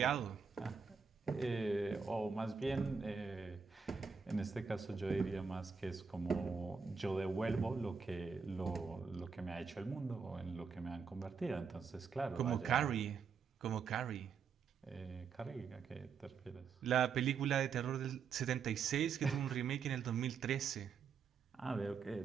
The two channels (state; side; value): quieter; left; 5.8 dB